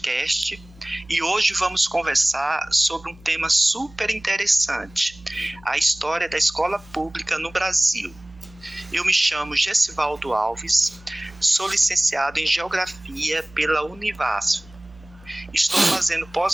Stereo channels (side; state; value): right; noise; hum, 23 dB below the sound